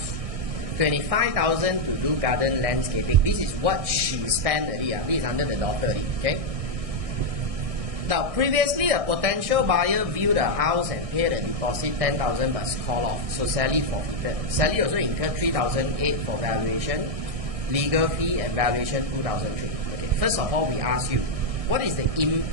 25,000 to do garden landscaping. This is what she spent already. This is under the daughter already. Okay. Now, previously a potential buyer viewed the house and paid a deposit 10,000 but called off. So Sally forfeited. Sally also incurred 3,008 for valuation, legal fee and valuation 2,003. Okay. First of all, we ask you, what is the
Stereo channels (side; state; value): left; late; 1.6 ms